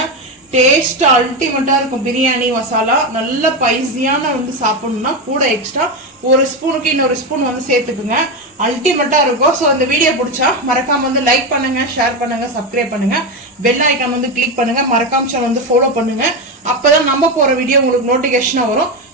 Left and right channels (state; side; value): normal; both; correlation 0.13